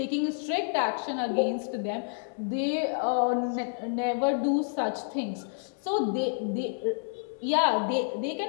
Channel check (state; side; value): silent; right; 59 dB below the other